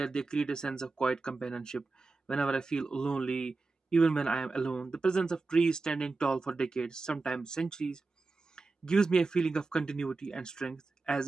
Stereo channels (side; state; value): left; quieter; 3.8 dB